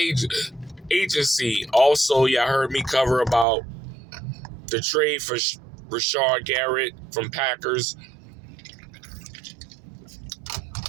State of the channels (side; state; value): left; drops out; at 3.5 s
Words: agency. Also, y'all heard me cover about the trade for Rashard Garrett from Packers.